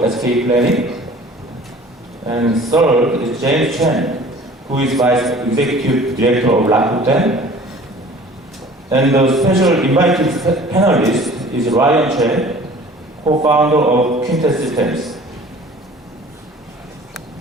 of SK Planning. And third is James Chen, who is Vice Executive Director of Rakuten. And the special invited panelist is Ryan Che, co-founder of Quintet Systems.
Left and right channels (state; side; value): normal; both; correlation 0.47